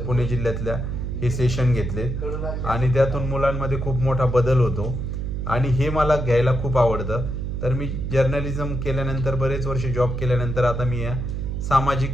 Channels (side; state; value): right; noise; hum, 3 dB below the sound